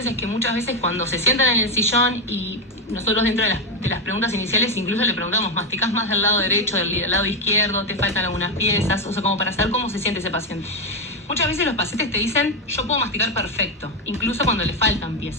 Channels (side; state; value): both; normal; correlation 0.08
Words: es que muchas veces cuando se sientan en el sillón y nosotros dentro de las preguntas iniciales incluso le preguntamos, ¿masticás más del lado derecho, del lado izquierdo? ¿Te faltan algunas piezas? O sea, como para saber cómo se siente ese paciente. Muchas veces los pacientes te dicen, yo puedo masticar perfecto, incluso cuando le faltan